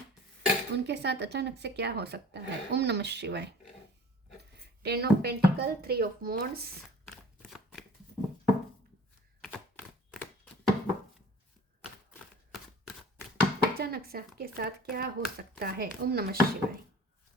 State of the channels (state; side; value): normal; both; correlation 0.46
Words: उनके साथ अचानक से क्या हो सकता है। ओम नमः शिवाय। 10 ऑफ पेंटिकल, 3 ऑफ वॉन्ड्स, अचानक से आपके साथ क्या हो सकता है। ओम नमः शिवाय।